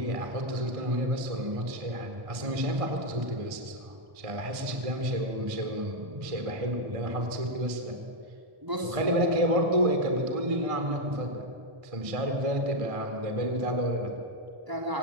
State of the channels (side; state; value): left; late; 1.5 ms